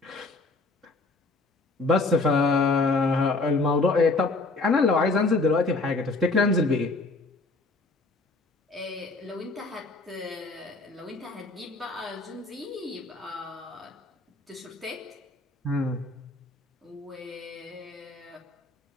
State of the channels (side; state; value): right; quieter; 3.5 dB